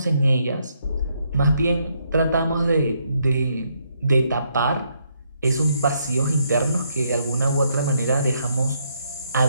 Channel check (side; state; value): both; inverted; correlation -0.75